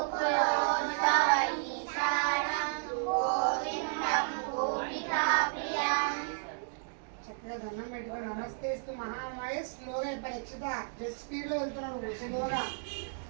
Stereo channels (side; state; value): left; silent; digital silence